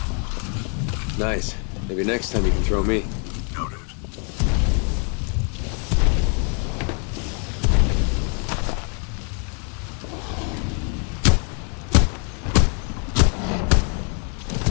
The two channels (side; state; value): right; quieter; 39.0 dB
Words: Nice. Maybe next time you can throw me. Noted.